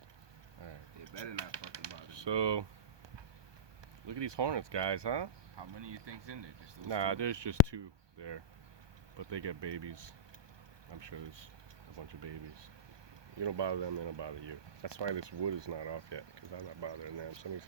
Alright. They better not fucking bother me. So, look at these hornets, guys, huh? How many you think's in there? Just those Nah, two? there's just 2 there. But they get babies. I'm sure there's a bunch of babies. You don't bother them, they don't bother you. That's why this wood is not off yet, because I'm not bothering them. Somebody's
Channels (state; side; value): late; left; 1.2 ms